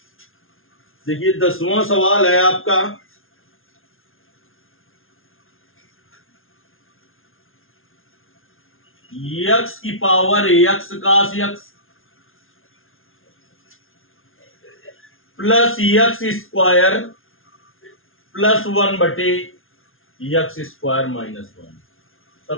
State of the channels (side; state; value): right; late; 0.60 ms